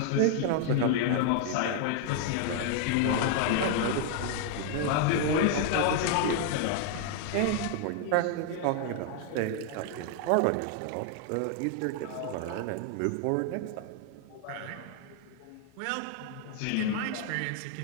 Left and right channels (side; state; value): both; different; correlation 0.00